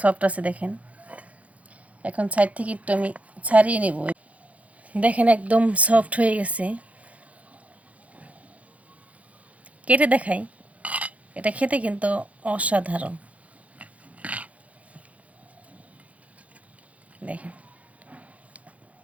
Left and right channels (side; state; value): left; late; 0.067 ms